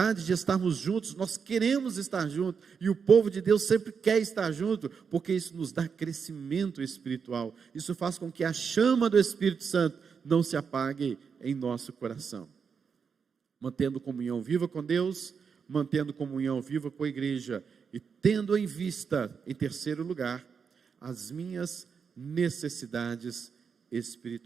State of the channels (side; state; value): left; quieter; 6.2 dB